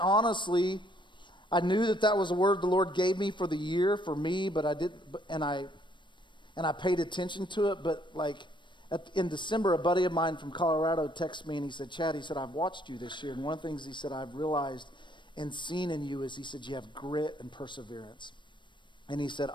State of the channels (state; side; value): late; right; 0.23 ms